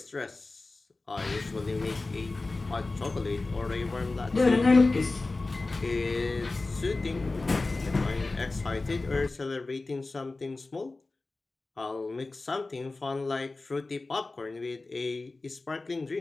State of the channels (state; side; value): quieter; right; 3.4 dB